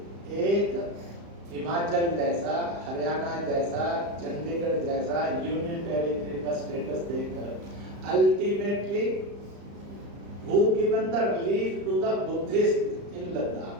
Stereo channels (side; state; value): left; late; 35 ms